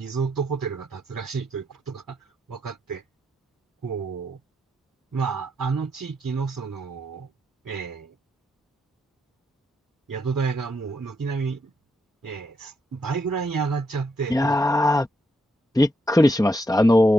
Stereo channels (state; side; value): normal; both; correlation 0.79